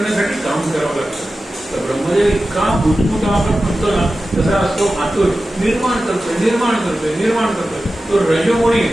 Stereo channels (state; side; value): normal; both; correlation 0.94